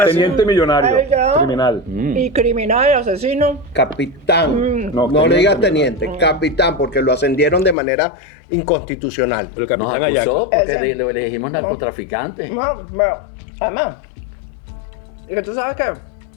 teniente millonario, Ay, ya. criminal. Y criminal, asesino. Capitán. Mm. No, No, le digas teniente. teniente, capitán, porque lo ascendieron de manera inconstitucional. El Nos capitán acusó Ayaco. porque Ese. le dijimos narcotraficante. No, bueno, además, y que tú sabes que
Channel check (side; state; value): right; drops out; at 7.8 s